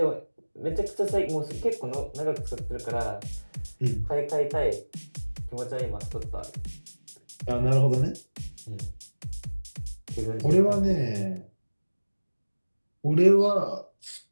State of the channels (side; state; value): both; inverted; correlation -1.00